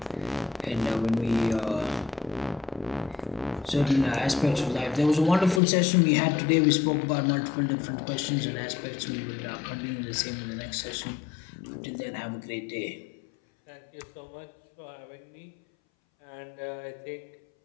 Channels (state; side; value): drops out; right; at 5.6 s